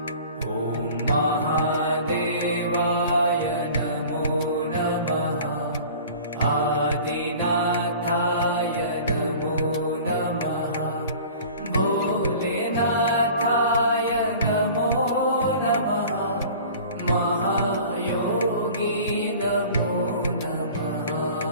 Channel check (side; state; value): both; inverted; correlation -0.43